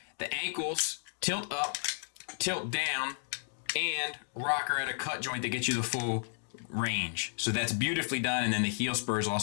The ankles tilt up, tilt down, and rocker at a cut joint that gets you the full range. So that's beautifully done. And then the heel spurs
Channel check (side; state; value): right; silent; digital silence